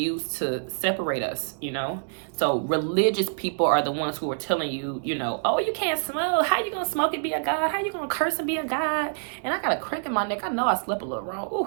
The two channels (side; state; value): left; silent; digital silence